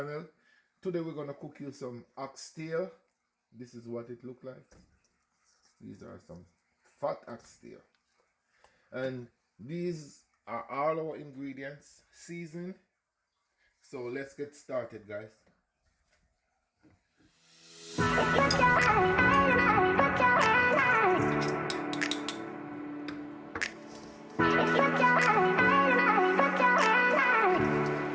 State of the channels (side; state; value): both; identical; correlation 1.00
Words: Today we're gonna cook you some oxtail. This is what it look like. These are some fat oxtail, and these are all our ingredients seasoned. So let's get started, guys.